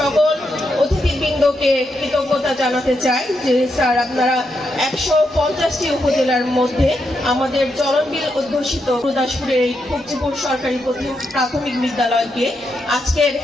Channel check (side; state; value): both; normal; correlation 0.82